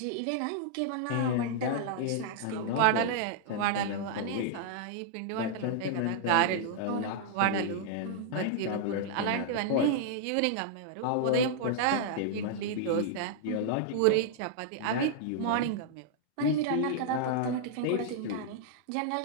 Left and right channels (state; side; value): different; both; correlation -0.01